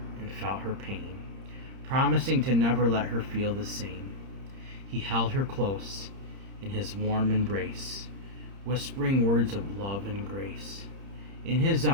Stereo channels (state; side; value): late; left; 30 ms